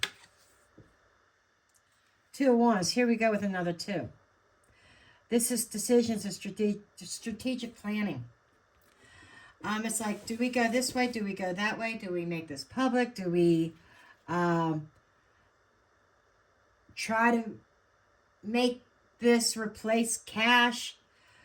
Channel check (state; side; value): identical; both; correlation 1.00